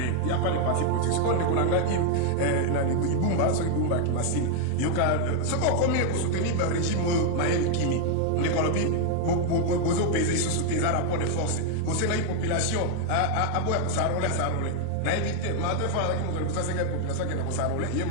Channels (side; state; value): both; different; correlation 0.00